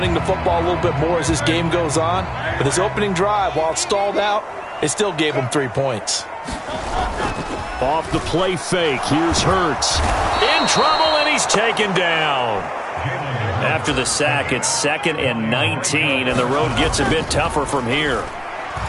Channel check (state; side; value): identical; both; correlation 1.00